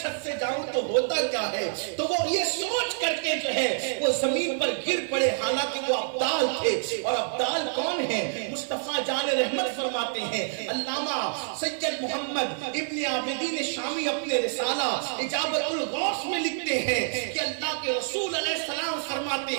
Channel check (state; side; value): silent; left; digital silence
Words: سے جاؤں تو ہوتا کیا ہے؟ تو وہ یہ سوچ کر کے جو ہے وہ زمین پر گر پڑے، حالانکہ وہ ابدال تھے۔ اور ابدال کون ہیں؟ مصطفیٰ جان رحمت فرماتے ہیں، علامہ سید محمد ابن عابدین شامی اپنے رسالہ اجابت الغوث میں لکھتے ہیں کہ اللہ کے رسول علیہ السلام فرماتے